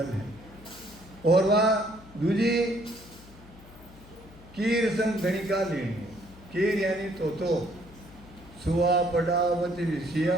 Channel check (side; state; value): left; noise; hum, 20 dB below the sound